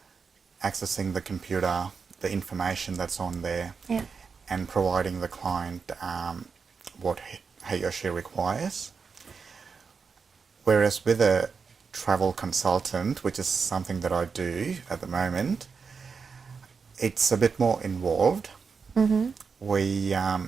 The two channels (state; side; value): quieter; left; 5.4 dB